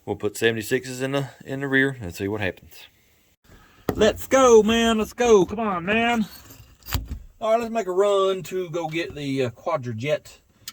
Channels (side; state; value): both; identical; correlation 1.00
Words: We'll put 76s in the rear and see what happens. Let's go, man. Let's go. Come on, man. All right, let's make a run to go get the quadrajet,